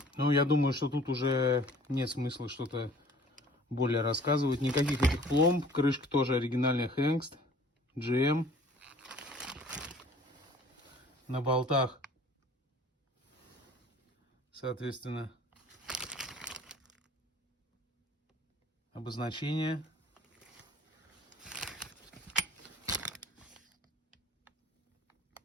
Ну, я думаю, что тут уже нет смысла что-то более рассказывать. Никаких этих пломб. Крышка тоже оригинальная Hengst. GM. На болтах, соответственно, обозначение.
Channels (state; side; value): normal; both; correlation 0.51